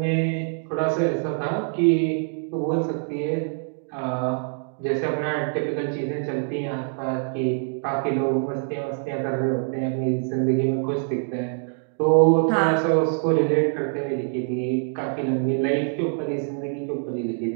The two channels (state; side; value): silent; left; 58 dB below the other